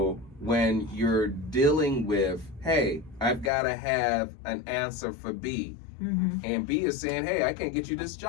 when you're dealing with, hey, I've got to have an answer for B. And B is saying, hey, I can't get you this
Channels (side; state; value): right; drops out; at 3.5 s